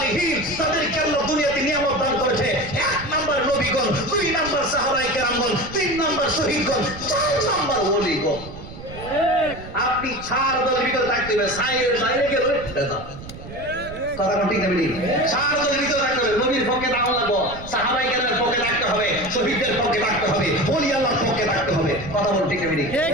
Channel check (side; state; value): right; noise; rumble, 14 dB below the sound